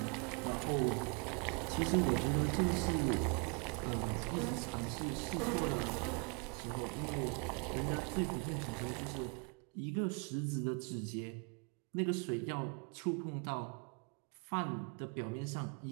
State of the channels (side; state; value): left; quieter; 36.1 dB